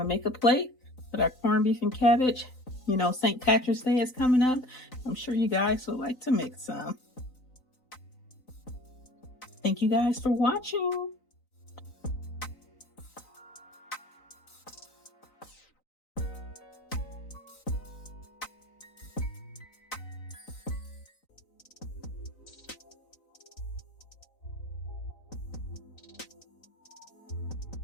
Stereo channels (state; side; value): late; right; 3.9 ms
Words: make a plate with our corned beef and cabbage. You know, St. Patrick's Day is coming up. I'm sure you guys would like to make some. Thank you guys for watching.